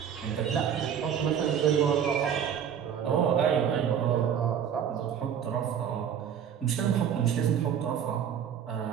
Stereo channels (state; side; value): quieter; left; 8.6 dB